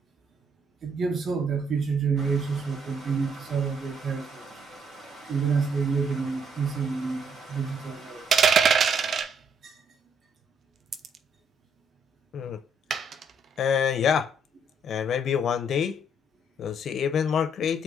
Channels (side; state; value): both; normal; correlation 0.70